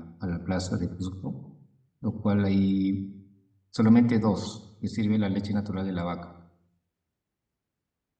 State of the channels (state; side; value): identical; both; correlation 1.00